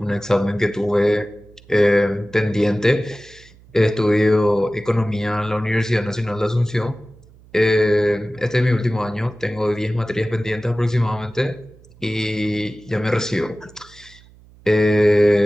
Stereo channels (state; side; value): noise; right; hum, 26 dB below the sound